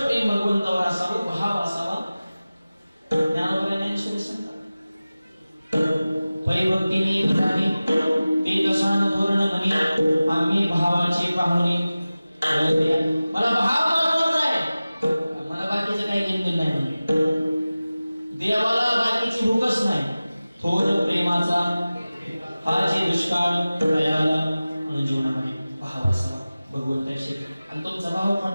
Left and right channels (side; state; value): both; inverted; correlation -0.97